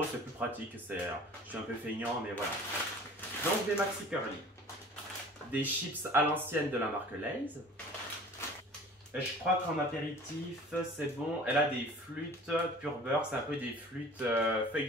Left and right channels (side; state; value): both; normal; correlation 0.45